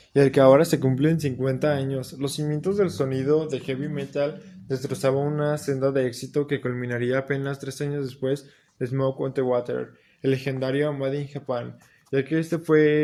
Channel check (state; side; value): identical; both; correlation 1.00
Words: y el que ahora se cumplen 50 años. Los cimientos del sonido de heavy metal destrozaba una senda de éxito que culminaría apenas 3 años después de Smoke on the Water, el legendario Made in Japan, ya que este